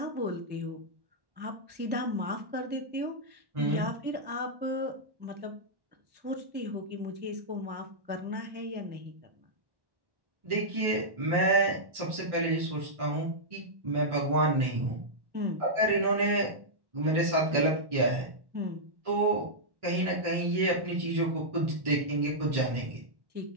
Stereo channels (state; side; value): late; left; 1.1 ms